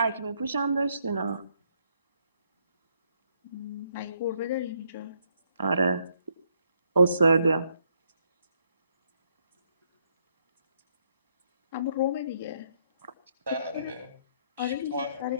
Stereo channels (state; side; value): inverted; both; correlation -0.73